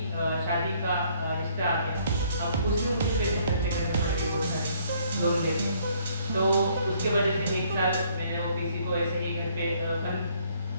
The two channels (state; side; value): inverted; both; correlation -0.64